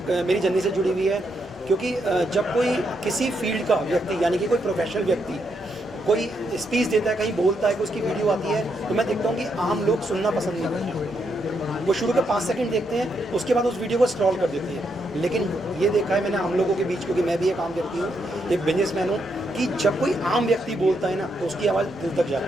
मेरी जर्नी से जुड़ी हुई है। क्योंकि जब कोई किसी फील्ड का व्यक्ति, यानी कि कोई प्रोफेशनल व्यक्ति कोई स्पीच देता है, कहीं बोलता है, कि उसकी वीडियो आती है, तो मैं देखता हूँ कि आम लोग सुनना पसंद नहीं करते। वो शुरू के 5 सेकंड देखते हैं, उसके बाद उस वीडियो को स्क्रॉल कर देते हैं। लेकिन ये देखा है मैंने हम लोगों के बीच, क्योंकि मैं भी एक आम व्यक्ति हूँ, एक बिजनेसमैन हूँ, कि जब कोई आम व्यक्ति बोलता है ना, तो उसकी आवाज़ दिल तक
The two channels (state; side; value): normal; both; correlation 0.79